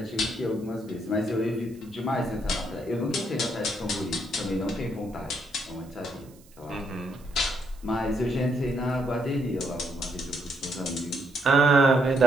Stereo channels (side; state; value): right; noise; hiss, 27 dB below the sound